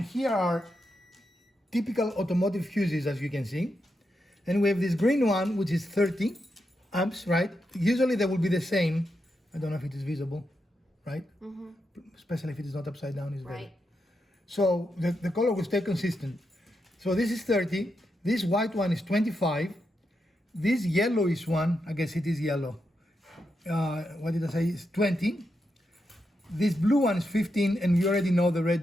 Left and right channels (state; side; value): normal; both; correlation 0.85